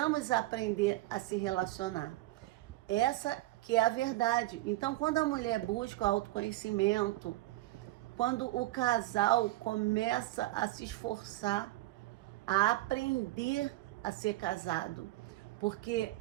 aprender a se relacionar. Essa que é a verdade. Então, quando a mulher busca o autoconhecimento, quando o casal começa a se esforçar, a aprender a ser casado, porque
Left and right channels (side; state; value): left; quieter; 17.6 dB